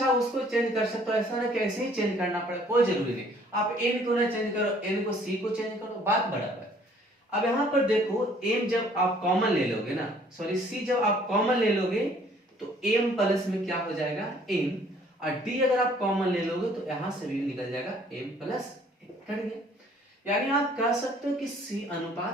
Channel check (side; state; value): both; normal; correlation 0.59